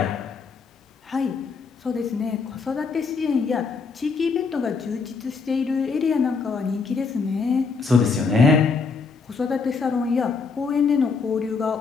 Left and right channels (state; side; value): quieter; right; 4.9 dB